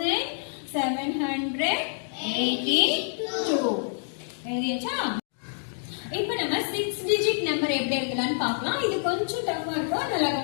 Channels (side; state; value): right; silent; digital silence